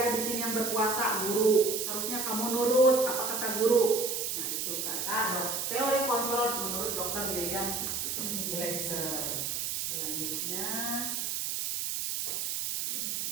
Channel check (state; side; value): noise; right; hiss, 1 dB below the sound